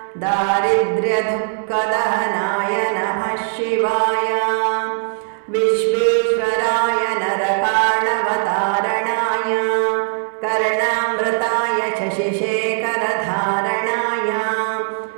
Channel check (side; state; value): left; silent; digital silence